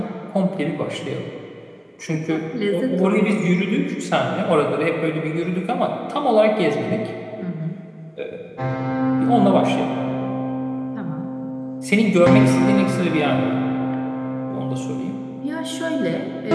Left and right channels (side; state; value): both; identical; correlation 1.00